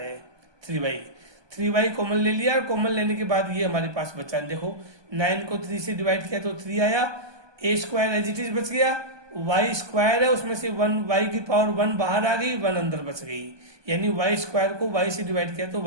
हैं, 3y कॉमन ले लिया, कॉमन लेने के बाद ये हमारे पास बचा, देखो 9 को 3 से डिवाइड किया तो 3 आया, a square as it is बच गया, y स्क्वायर है उसमें से 1 y की पावर 1 बाहर आ गई, 1 अंदर बच गई, यानी y स्क्वायर को y से डिवाइड किया तो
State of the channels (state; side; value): late; left; 1.2 ms